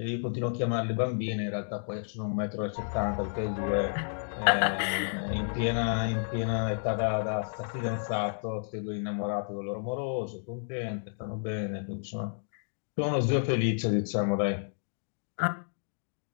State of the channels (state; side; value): silent; right; digital silence